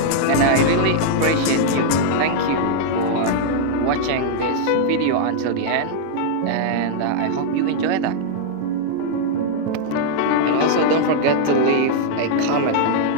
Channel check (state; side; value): different; both; correlation -0.01